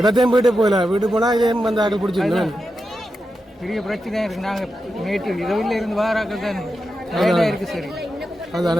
போயிட்டு போகல. வீட்டு போனால் இதே வந்து ஆக்கள் பிடிச்சிருந்தேன். பெரிய பிரச்சனையாக இருக்குது. நாங்கள் நேற்று இரவில் இருந்து வாராக்கள் தான் வேலையாக இருக்குது. சரி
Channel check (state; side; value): normal; both; correlation 0.89